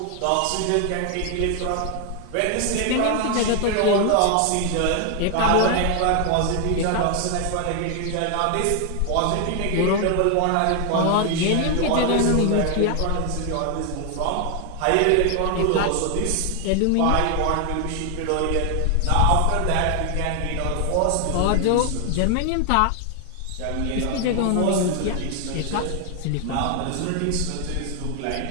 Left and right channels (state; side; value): different; both; correlation 0.00